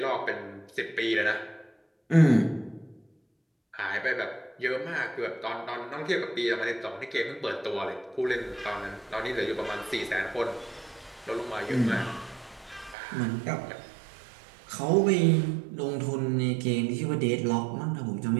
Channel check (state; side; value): drops out; left; at 13.0 s